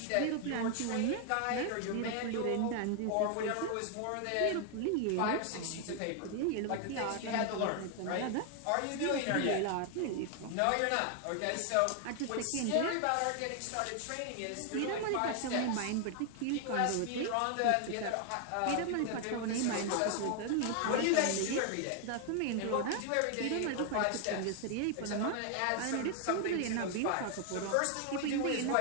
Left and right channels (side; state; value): both; different; correlation 0.00